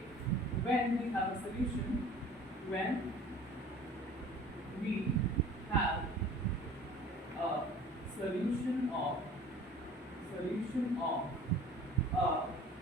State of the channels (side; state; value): both; normal; correlation 0.46